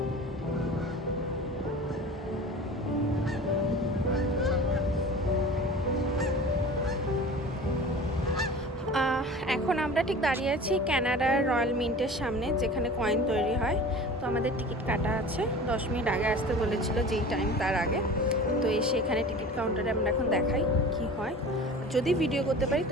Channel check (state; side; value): normal; both; correlation 0.38